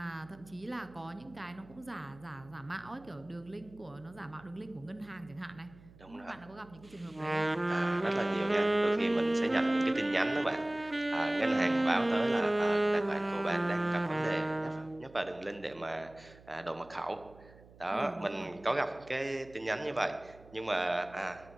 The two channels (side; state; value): right; noise; hum, 23 dB below the sound